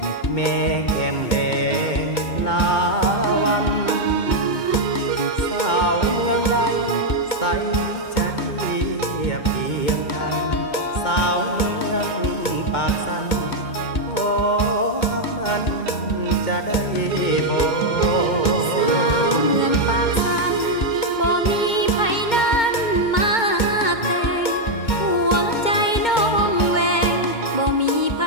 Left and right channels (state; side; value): late; right; 2.2 ms